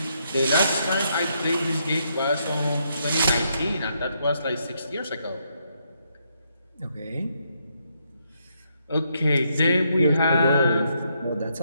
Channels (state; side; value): inverted; both; correlation -0.77